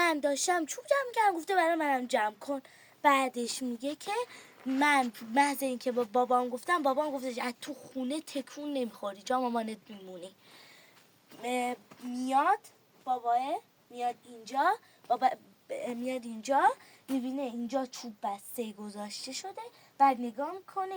داشتم چوب جمع کردم، گفته برای منم جمع کن. بعدش میگه که من محض این که با بابام گفتم، بابام گفته از تو خونه تکون نمیخوری، جا مامانت میمونی. میاد باباه، میاد اینجا، بابا میاد اینجا، میبینه اینجا چوب بسته گذاشته شده. بعد نگاه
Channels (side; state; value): both; identical; correlation 1.00